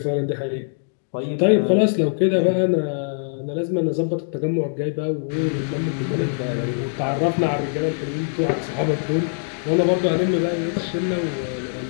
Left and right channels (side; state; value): right; silent; digital silence